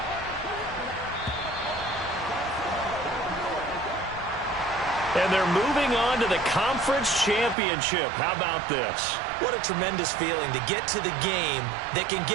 And they're moving on to the conference championship. How about this? What a tremendous feeling to get to the game that can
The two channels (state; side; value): drops out; left; at 7.6 s